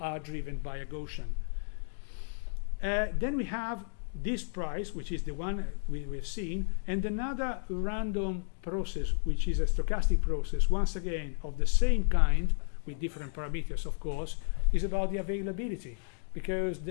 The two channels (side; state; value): right; silent; digital silence